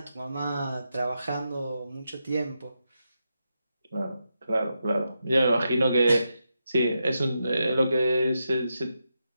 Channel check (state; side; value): inverted; both; correlation -0.86